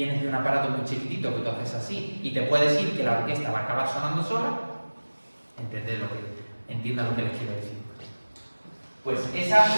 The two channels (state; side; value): inverted; both; correlation -1.00